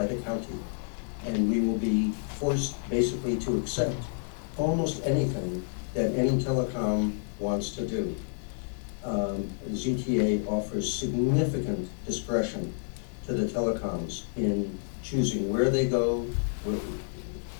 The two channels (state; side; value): silent; right; 58 dB below the other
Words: the county. And we will be forced basically to accept almost anything that any telecom wants to do. ZTA offers significant discretion to the telecoms in choosing where they go.